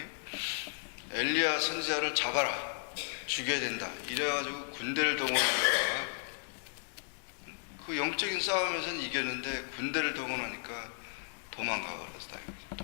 엘리야 선지자를 잡아라, 죽여야 된다. 이래가지고 군대를 동원하니까 그 영적인 싸움에서는 이겼는데 군대를 동원하니까 도망가 버렸다.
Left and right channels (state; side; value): silent; right; digital silence